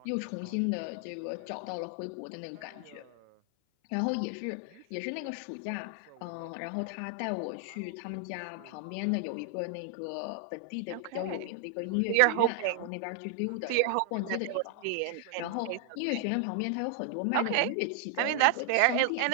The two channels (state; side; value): different; both; correlation 0.00